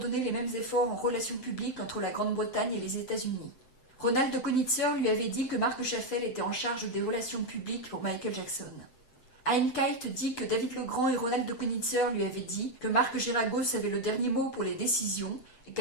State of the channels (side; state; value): right; late; 7.7 ms